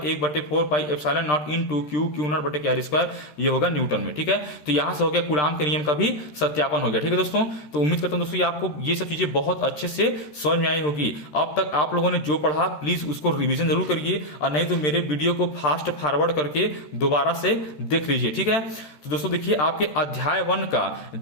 1/4 पाई epsilon naught into Q not बटे के आर स्क्वायर। ये होगा न्यूटन में, ठीक है। तो यहां से हो गया कूलाम के नियम का भी सत्यापन हो गया, ठीक है दोस्तों। तो उम्मीद करता हूं दोस्तों आपको ये सब चीजें बहुत अच्छे से समझ में आई होगी। अब तक आप लोगों ने जो पढ़ा प्लीज उसको रिविजन जरूर करिए, और नहीं तो मेरे वीडियो को फास्ट फॉरवर्ड करके दोबारा से देख लीजिए, ठीक है। तो दोस्तों देखिए आपके अध्याय 1 का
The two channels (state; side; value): late; right; 13 ms